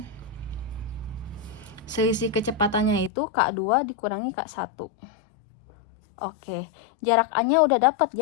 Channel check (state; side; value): drops out; right; at 3.1 s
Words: Selisih kecepatannya itu K2 dikurangi K1. Oke, jarak A-nya udah dapat